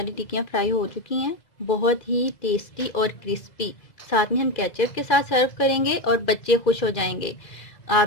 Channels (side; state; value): right; late; 2.0 ms